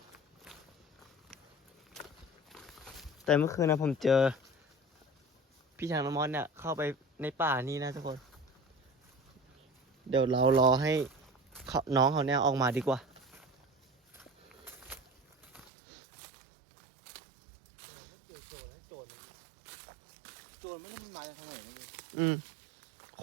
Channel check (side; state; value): left; drops out; at 15.7 s